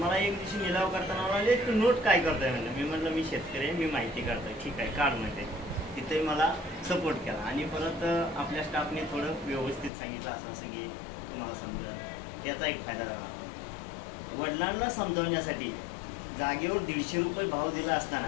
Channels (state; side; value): drops out; right; at 9.9 s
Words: मला एक दिवशी निलाव करताना म्हणाले तू नोट काय करतोय म्हणलं। मी म्हटलं मी शेतकरी आहे, मी माहिती काढतोय। ठीक आहे काढ म्हणते। तिथे मला सपोर्ट केला आणि परत आपल्या स्टाफने थोडं व्यवस्थित सांगितलं असं असं की तुम्हाला समजेल, त्याचा एक फायदा झाला। वडिलांना समजावण्यासाठी जागेवर 150 रुपये भाव दिला